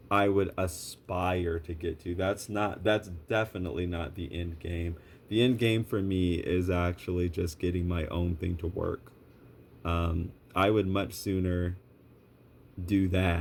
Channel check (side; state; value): both; identical; correlation 1.00